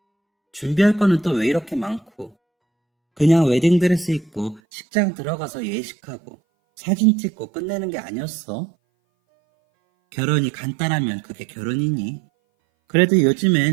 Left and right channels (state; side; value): drops out; left; at 4.6 s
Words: 준비할 거는 또 왜 이렇게 많고? 그냥 웨딩드레스 입고 식장 들어가서 예식하고 사진 찍고 끝내는 게 아니었어? 결혼이 간단하면 그게 결혼이니? 그래도